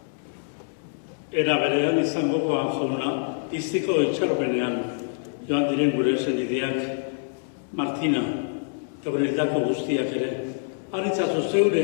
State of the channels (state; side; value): silent; right; digital silence